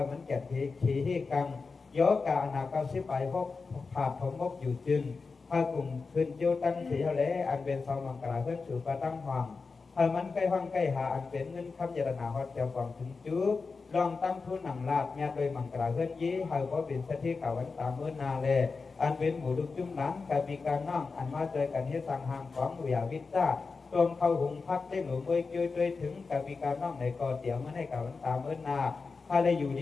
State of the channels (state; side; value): quieter; right; 4.5 dB